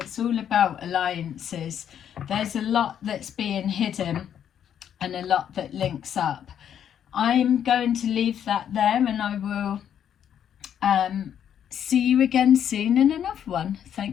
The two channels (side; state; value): right; quieter; 9.3 dB